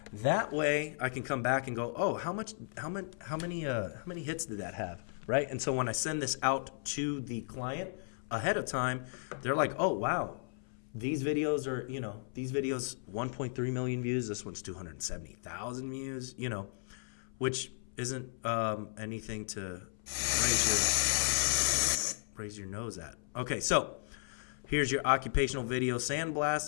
That way, I can come back and go, oh, how many hits did that have? Right? And so when I send this out to the client ahead of time, they're like, oh, wow, these videos are, 1.3 million views. This one's 270,000 views, which isn't anything to raise your raise your nose at? Okay, so here's your occupational video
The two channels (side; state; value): right; silent; 54 dB below the other